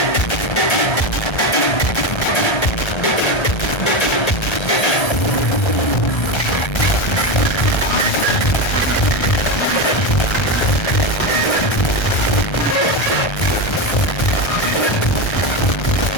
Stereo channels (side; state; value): right; late; 1.3 ms